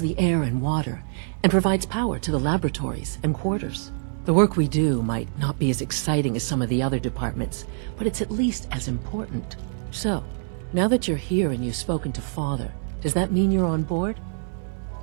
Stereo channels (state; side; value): silent; left; digital silence